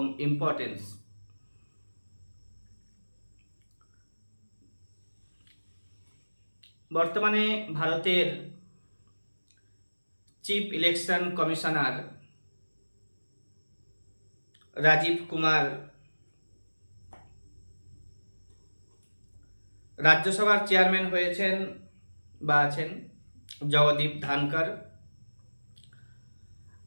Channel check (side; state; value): both; inverted; correlation -1.00